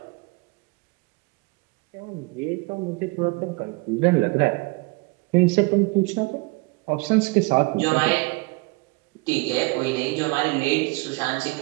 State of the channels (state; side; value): quieter; left; 26.7 dB